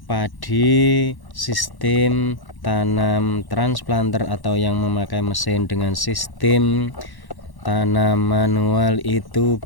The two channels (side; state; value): right; late; 1.1 ms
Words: padi sistem tanam transplanter atau yang memakai mesin dengan sistem tanam manual itu